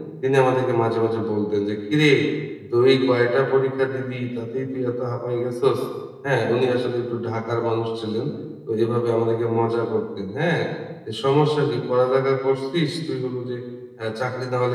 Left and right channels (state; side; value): identical; both; correlation 1.00